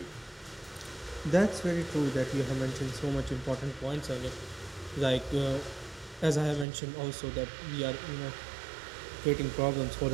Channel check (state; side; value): drops out; left; at 6.7 s